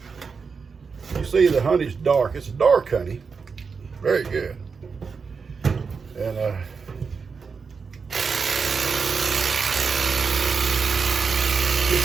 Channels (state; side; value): quieter; left; 5.3 dB